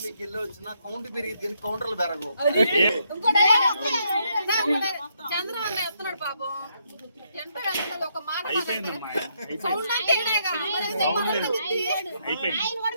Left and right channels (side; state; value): both; inverted; correlation -0.76